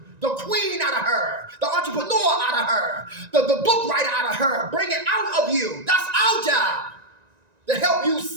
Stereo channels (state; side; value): late; left; 1.9 ms